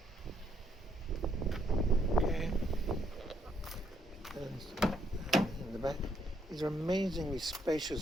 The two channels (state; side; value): normal; both; correlation 0.73